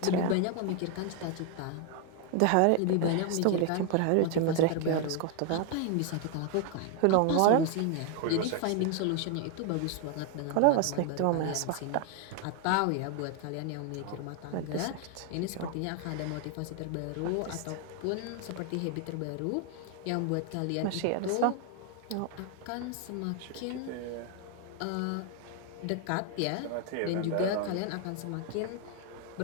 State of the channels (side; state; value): both; different; correlation 0.01